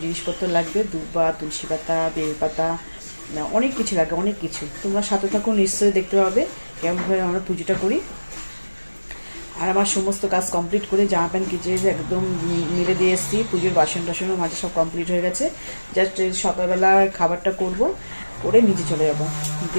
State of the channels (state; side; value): inverted; both; correlation -1.00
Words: জিনিসপত্র লাগবে, দুব্বা, তুলসী পাতা, বেলপাতা, অনেক কিছু লাগবে, অনেক কিছু। তোমরা সাথে থাকো, নিশ্চয়ই দেখতে পাবে কেমনভাবে আমরা পুজোটা করি। আর আমার সমস্ত কাজ কমপ্লিট করে জামা প্যান্ট কিচে একদম মিলে দিয়ে এসেছি। পুজোর বাসন টাসনও মাঝে সব কমপ্লিট হয়ে গেছে। জাস্ট সকালবেলা খাবারটা করব, করে নিচে চলে যাবো,